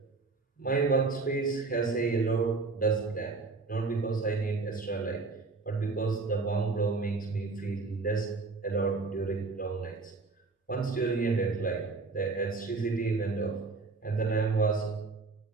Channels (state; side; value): quieter; left; 4.0 dB